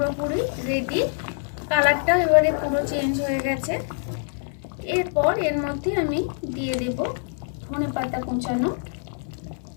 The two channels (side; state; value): right; silent; 62 dB below the other